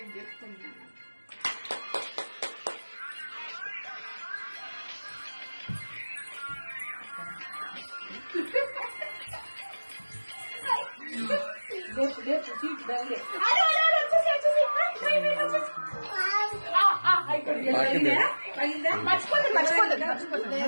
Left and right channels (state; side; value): inverted; both; correlation -1.00